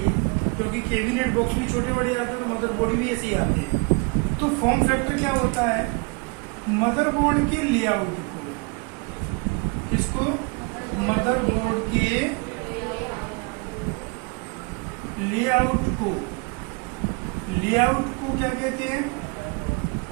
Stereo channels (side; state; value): left; quieter; 31.7 dB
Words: क्योंकि कैबिनेट बॉक्स भी छोटे बड़े आते हैं और मदरबोर्ड भी ऐसे ही आते हैं। तो फॉर्म फैक्टर क्या होता है? मदरबोर्ड के लेआउट को, इसको मदरबोर्ड के लेआउट को क्या कहते हैं?